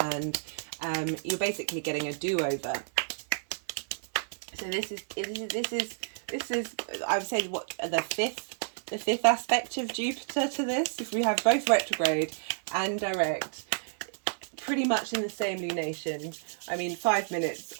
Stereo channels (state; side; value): silent; left; digital silence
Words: you're basically getting a do-over. So this is I would say what the fifth aspect of Jupiter to this. If we have both retrograde and direct, pretty much in the same lunation. I mean, 5 minutes